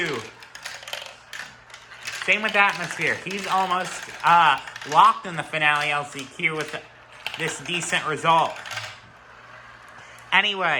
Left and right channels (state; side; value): identical; both; correlation 1.00